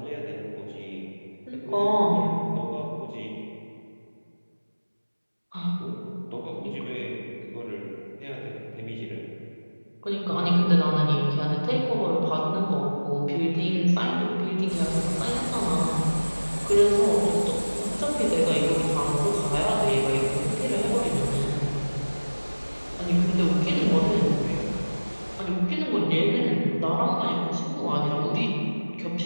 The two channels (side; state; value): both; inverted; correlation -1.00